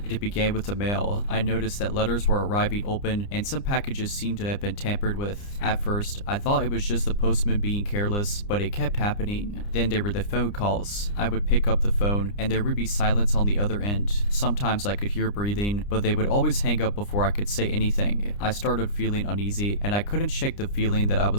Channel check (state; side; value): late; right; 29 ms